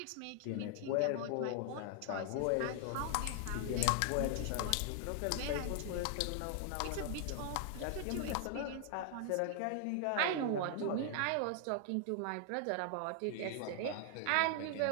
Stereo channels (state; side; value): different; both; correlation 0.00